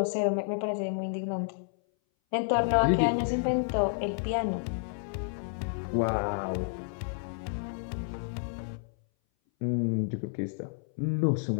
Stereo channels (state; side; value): silent; right; 58 dB below the other